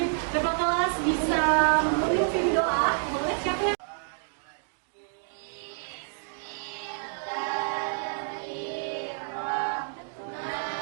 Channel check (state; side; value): silent; left; digital silence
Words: Bapak kelas bisa memimpin doa. Boleh siapa yang